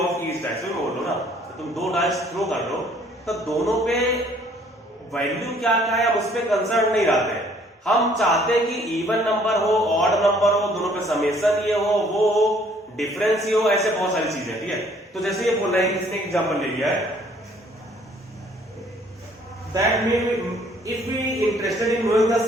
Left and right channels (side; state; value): both; normal; correlation 0.60